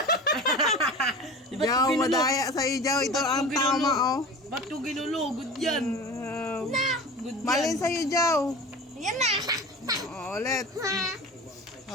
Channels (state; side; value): normal; both; correlation 0.35